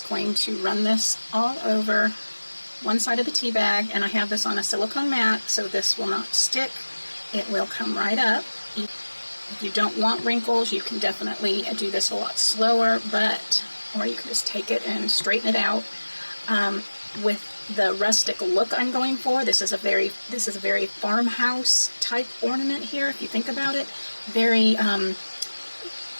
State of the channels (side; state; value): both; inverted; correlation -1.00